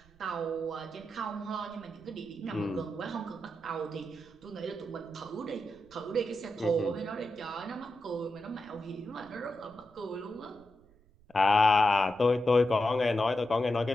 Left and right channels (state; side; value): noise; right; rumble, 28 dB below the sound